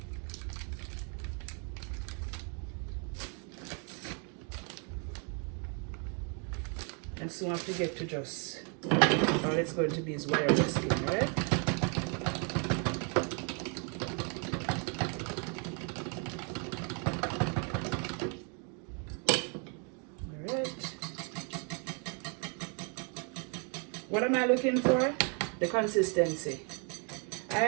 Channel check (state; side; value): quieter; left; 38.3 dB